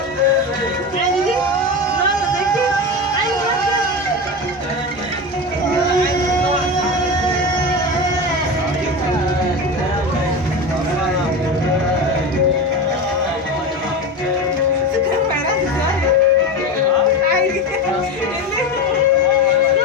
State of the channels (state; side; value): normal; both; correlation 0.23